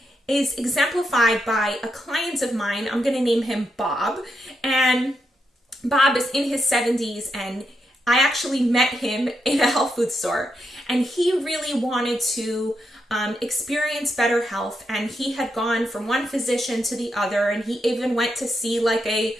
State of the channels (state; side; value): normal; both; correlation 0.83